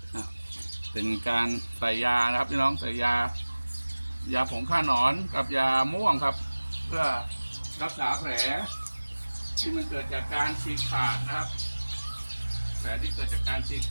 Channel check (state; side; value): inverted; both; correlation -1.00